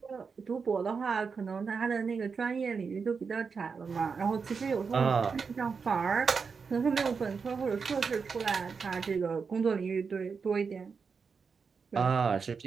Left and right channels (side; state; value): left; quieter; 5.4 dB